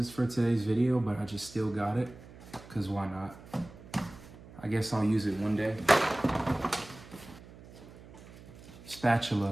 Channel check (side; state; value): right; noise; hum, 19 dB below the sound